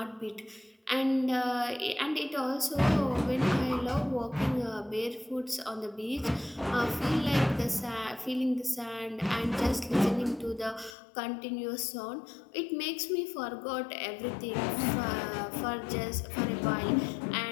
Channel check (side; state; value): right; drops out; at 11.0 s